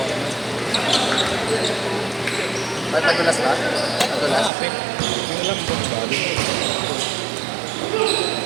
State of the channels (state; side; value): drops out; left; at 4.5 s